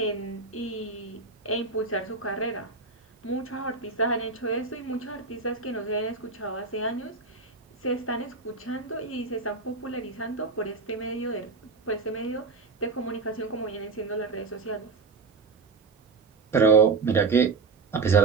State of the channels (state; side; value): quieter; left; 4.4 dB